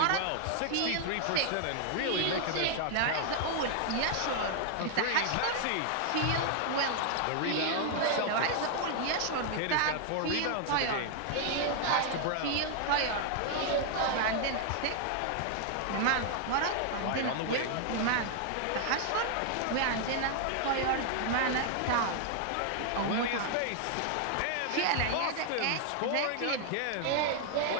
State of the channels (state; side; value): different; both; correlation 0.00